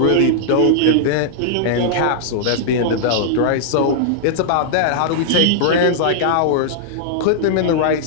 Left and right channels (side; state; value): both; different; correlation -0.01